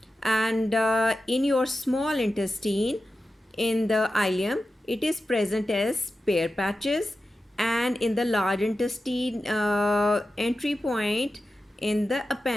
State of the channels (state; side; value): normal; both; correlation 0.92